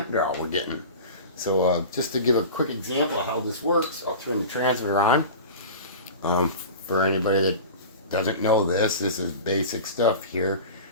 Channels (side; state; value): both; inverted; correlation -0.34